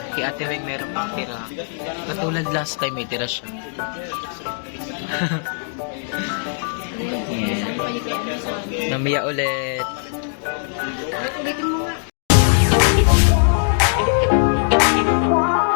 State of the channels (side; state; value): right; silent; digital silence